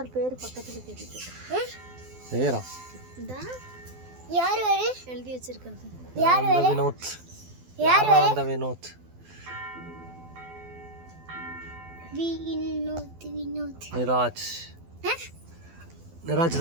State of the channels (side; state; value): left; late; 12 ms